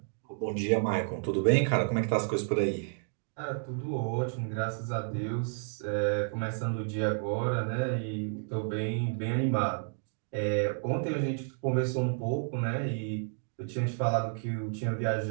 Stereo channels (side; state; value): left; silent; 57 dB below the other